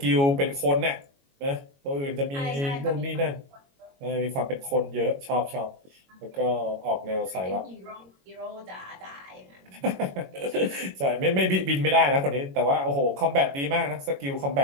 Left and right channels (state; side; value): late; left; 22 ms